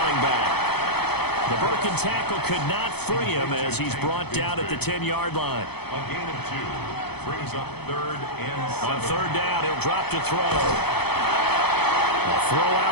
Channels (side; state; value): right; late; 0.97 ms